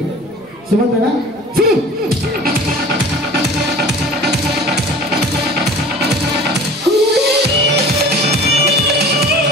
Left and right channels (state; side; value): noise; right; rumble, 30 dB below the sound